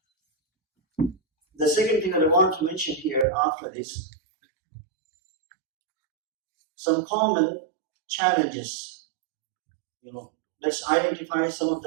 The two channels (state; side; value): drops out; left; at 3.2 s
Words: The second thing that I want to mention here after this, some common challenges. Let's identify some of